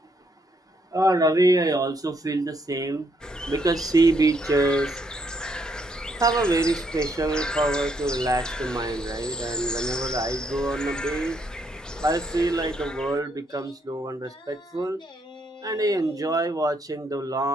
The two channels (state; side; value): normal; both; correlation 0.74